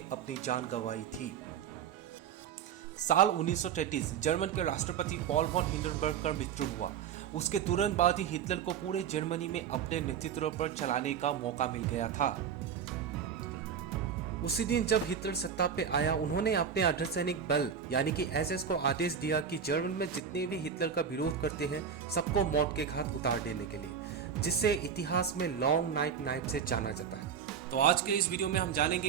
अपनी जान गंवाई थी। साल 1933 जर्मन के राष्ट्रपति पॉल वॉन हिंडनबर्ग का मृत्यु हुआ। उसके तुरंत बाद ही हिटलर को पूरे जर्मनी में अपने नेतृत्व पर चलाने का मौका मिल गया था। उसी दिन जब हिटलर सत्ता पे आया, उन्होंने अपने अर्धसैनिक बल यानी कि एसएस को आदेश दिया कि जर्मन में जितने भी हिटलर का विरोध करते हैं सबको मौत के घाट उतार देने के लिए, जिससे इतिहास में लॉन्ग नाइट नाइफ से जाना जाता है। तो आज के इस वीडियो में हम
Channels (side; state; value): left; quieter; 7.6 dB